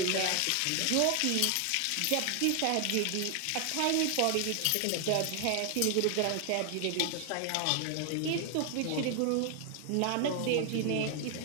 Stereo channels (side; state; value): both; different; correlation 0.00